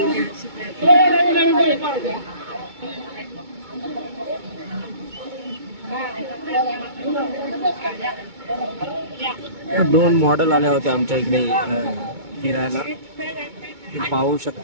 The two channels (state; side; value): late; left; 2.2 ms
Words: दोन मॉडेल आल्या होत्या आमच्या इकडे फिरायला, ते पाहू